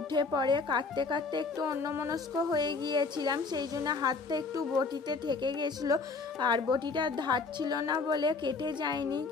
পড়ে। কাটতে কাটতে একটু অন্যমনস্ক হয়ে গিয়েছিলাম, সেই জন্য হাতটা একটু বটিতে থেকে গেছিল। আর বটিটা ধার ছিল না বলে কেটে যায়নি।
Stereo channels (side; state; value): right; quieter; 4.3 dB